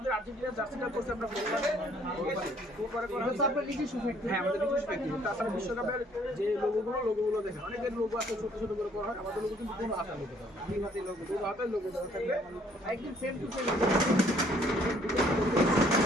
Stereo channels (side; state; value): both; normal; correlation 0.62